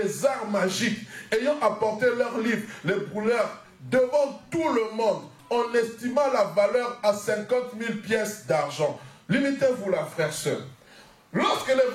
arts magiques, ayant apporté leurs livres, les brûlèrent devant tout le monde, on estima la valeur à 50 000 pièces d'argent. Limitez-vous là, frère, sœur. Lorsque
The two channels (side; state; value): both; identical; correlation 1.00